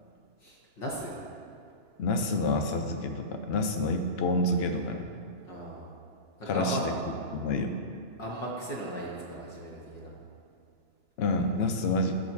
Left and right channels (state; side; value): late; right; 2.9 ms